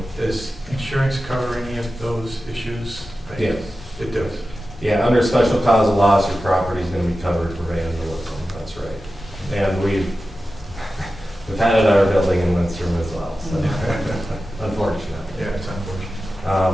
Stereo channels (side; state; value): both; normal; correlation 0.93